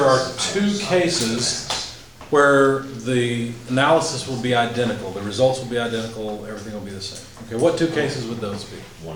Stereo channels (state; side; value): identical; both; correlation 1.00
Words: are 2 cases where the analysis will be identical, the results will be identical, everything will be the same? Okay, what 2 cases would those be? 1